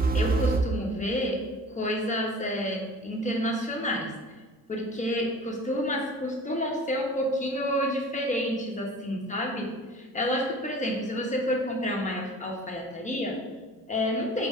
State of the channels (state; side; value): normal; both; correlation 0.44